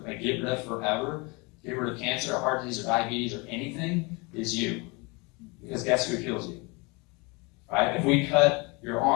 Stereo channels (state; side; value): quieter; right; 28.2 dB